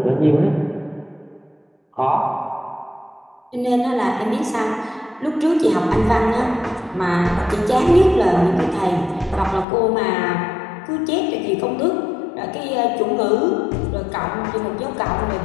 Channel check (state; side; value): drops out; right; at 9.7 s